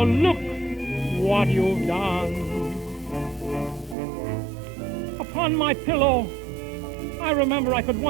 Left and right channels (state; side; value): drops out; left; at 4.0 s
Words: look what you've done. Upon my pillow, I remember I could